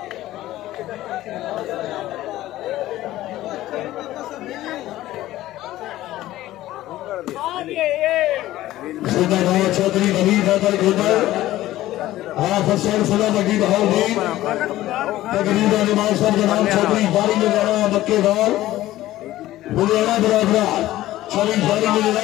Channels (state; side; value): quieter; right; 15.3 dB